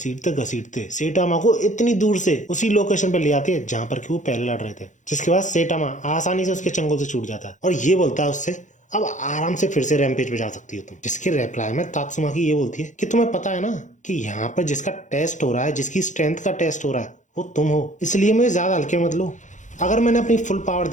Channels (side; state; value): right; late; 0.36 ms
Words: घसीटते सेटामा को इतनी दूर से उसी लोकेशन पे ले आती है जहाँ पर कि वो पहले लड़ रहे थे, जिसके बाद सेटामा आसानी से उसके चंगुल से छूट जाता है और ये बोलता है उससे, अब आराम से फिर से रैम्पेज पे जा सकती हो तुम। जिसके रिप्लाई में तात्सुमाकी ये बोलती है कि तुम्हें पता है ना कि यहाँ पर जिसका टेस्ट हो रहा है, जिसकी स्ट्रेंथ का टेस्ट हो रहा है, वो तुम हो, इसलिए मुझे ज्यादा हल्के मत लो। अगर मैंने अपनी फुल पावर